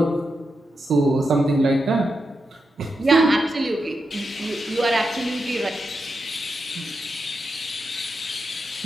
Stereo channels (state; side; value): normal; both; correlation 0.87